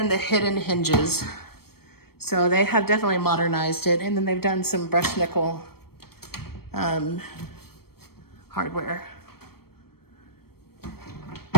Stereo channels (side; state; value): right; late; 0.95 ms